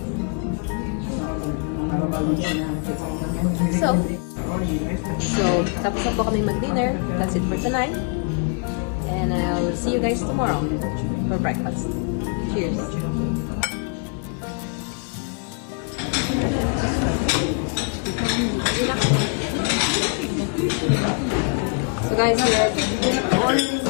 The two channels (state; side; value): quieter; right; 38.9 dB